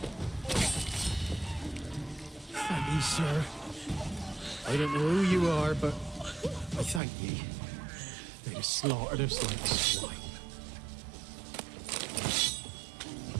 Thank ye, sir. I don't know who you are, but I thank ye. They'd have slaughtered us like swine.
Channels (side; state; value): left; drops out; at 7.0 s